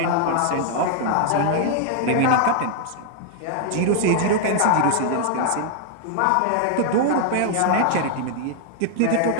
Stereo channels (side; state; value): both; different; correlation 0.00